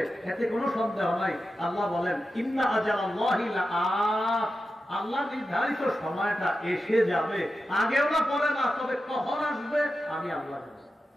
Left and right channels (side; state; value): both; normal; correlation 0.91